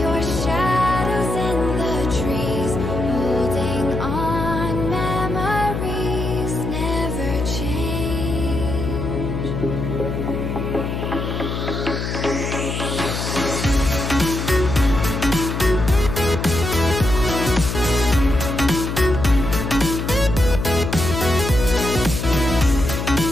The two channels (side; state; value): left; noise; hum, 3 dB below the sound